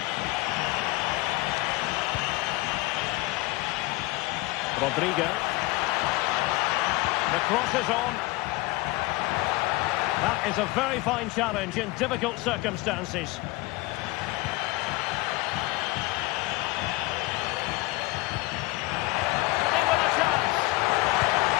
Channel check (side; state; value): right; quieter; 21.3 dB